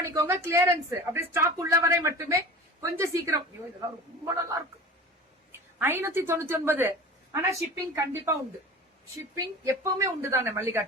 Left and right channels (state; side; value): normal; both; correlation 0.37